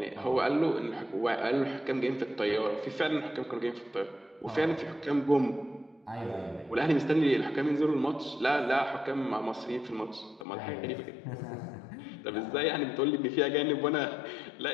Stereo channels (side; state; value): right; drops out; at 10.5 s